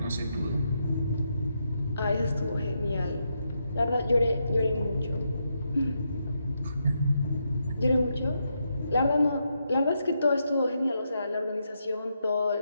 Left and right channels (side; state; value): both; inverted; correlation -0.82